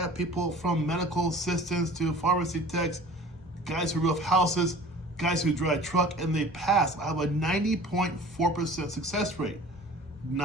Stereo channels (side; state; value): both; normal; correlation 0.45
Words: people from medical assistants to pharmacy techs, guys who roof houses, guys who drive truck, and they pass. I have a 90.4% success rate.